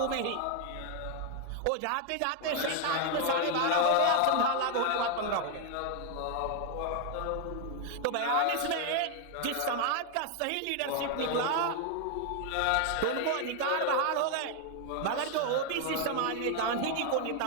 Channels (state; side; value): different; both; correlation 0.01